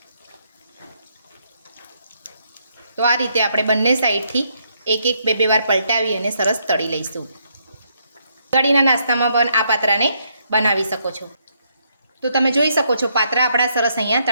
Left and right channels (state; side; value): inverted; both; correlation -0.75